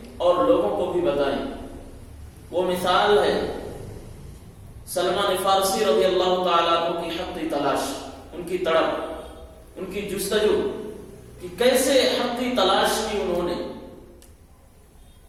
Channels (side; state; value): both; identical; correlation 1.00